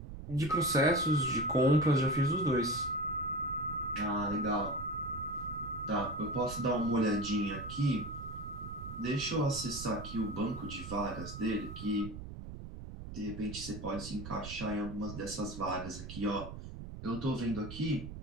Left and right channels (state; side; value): noise; right; rumble, 10 dB below the sound